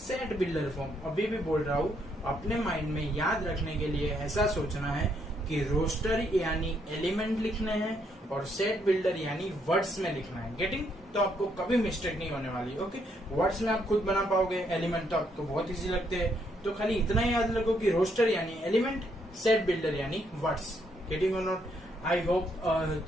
बिल्डर फॉर्म। अभी भी बोल रहा हूँ, अपने माइंड में याद रखने के लिए ऐसा सोचना है कि रोस्टर यानी एलिमेंट लिखने हैं और सेट बिल्डर यानी वर्ड्स में लिखना है। गेटिंग? तो आपको कभी मिस्टेक नहीं होने वाली। ओके, वर्ड्स में आप खुद बना पाओगे, एलिमेंट तो आपको बहुत इजी लगते हैं। तो खाली इतना ही याद रखो कि रोस्टर यानी एलिमेंट, सेट बिल्डर यानी वर्ड्स। गेटिंग और not? I hope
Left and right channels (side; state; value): both; normal; correlation 0.74